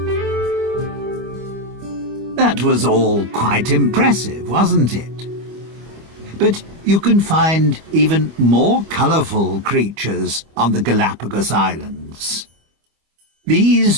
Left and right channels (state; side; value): late; left; 25 ms